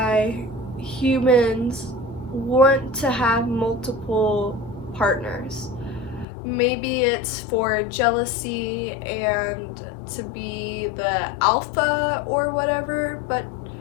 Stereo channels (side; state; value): right; drops out; at 6.2 s